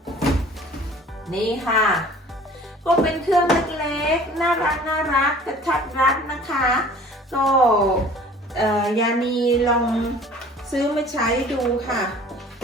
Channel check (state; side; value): normal; both; correlation 0.48